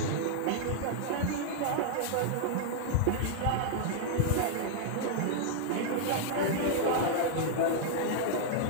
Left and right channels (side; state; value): both; different; correlation -0.01